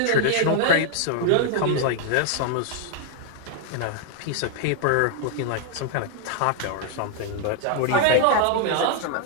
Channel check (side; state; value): both; different; correlation 0.00